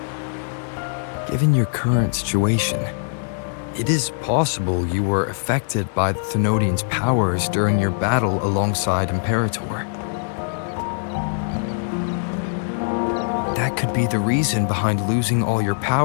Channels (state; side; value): silent; right; digital silence